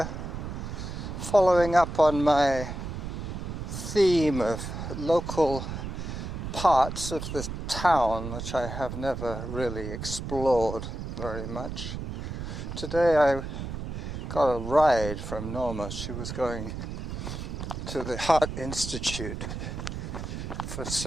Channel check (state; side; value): noise; right; rumble, 6 dB below the sound